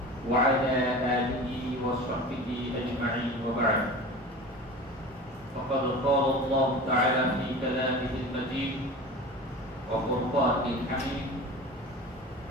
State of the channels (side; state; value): both; normal; correlation 0.35